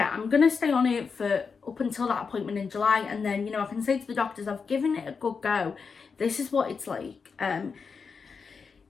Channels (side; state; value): right; quieter; 5.4 dB